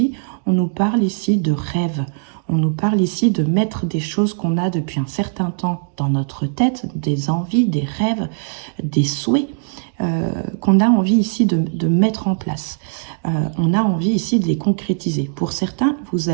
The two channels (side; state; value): left; silent; digital silence